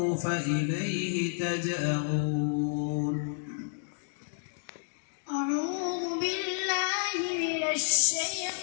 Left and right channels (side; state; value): right; silent; digital silence